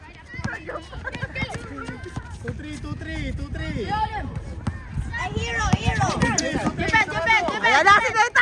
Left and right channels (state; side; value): identical; both; correlation 1.00